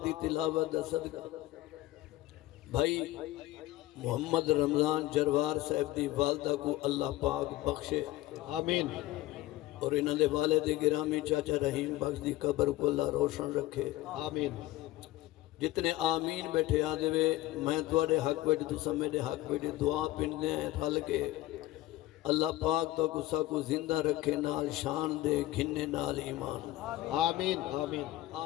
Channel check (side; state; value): right; quieter; 16.5 dB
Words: دی تلاوت دا صدقہ بھائی محمد رمضان جروار صاحب دی والدہ کو اللہ پاک بخشے آمین اور انہوں دے والد گرامی چاچا رحیم بخش دی قبر کو اللہ روشن رکھے آمین جتنے آمین بیٹھے آدھے وے میں توڑے حق بیٹھے تو سمیدے حق بیٹھے دعا پندے ہیں رل کے اللہ پاک تو کسا کو زندہ رکھے نال شان دے گھننے نال ایمان آمین آمین